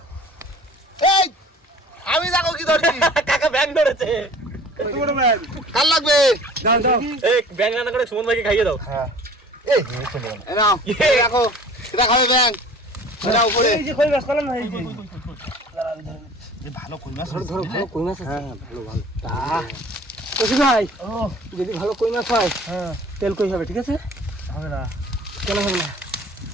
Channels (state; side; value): normal; both; correlation 0.47